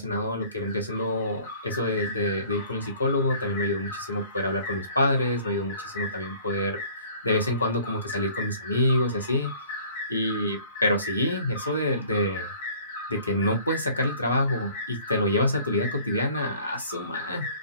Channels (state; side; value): inverted; both; correlation -0.51